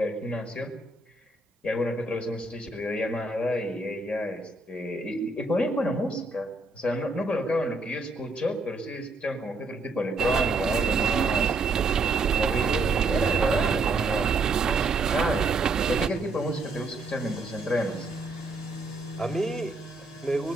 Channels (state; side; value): quieter; left; 3.1 dB